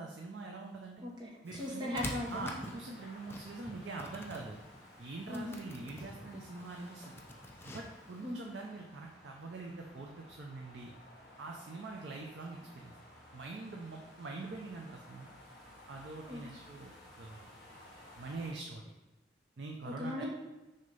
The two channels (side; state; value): both; normal; correlation 0.53